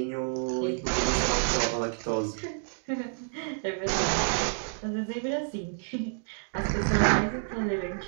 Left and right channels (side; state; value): left; silent; digital silence